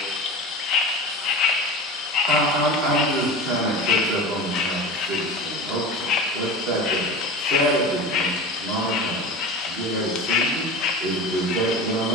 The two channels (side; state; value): both; normal; correlation 0.32